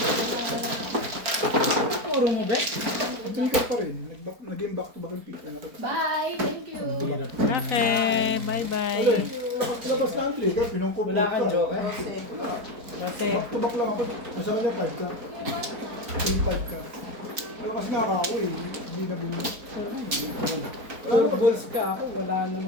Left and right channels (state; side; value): late; left; 4.5 ms